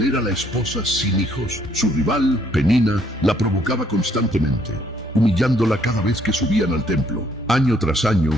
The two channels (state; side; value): normal; both; correlation 0.67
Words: era la esposa sin hijos. Su rival, Penina, la provocaba constantemente, humillándola cada vez que subían al templo. Año tras año,